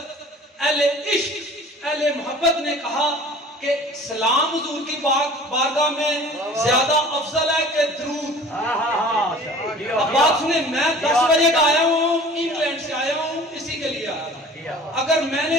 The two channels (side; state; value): both; normal; correlation 0.45